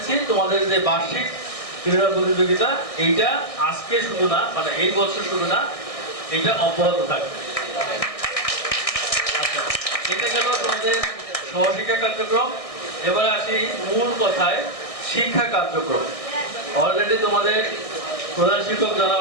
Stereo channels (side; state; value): right; late; 1.6 ms